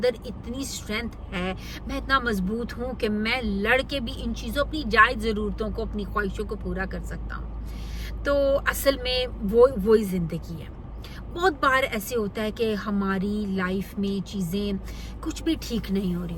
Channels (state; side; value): identical; both; correlation 1.00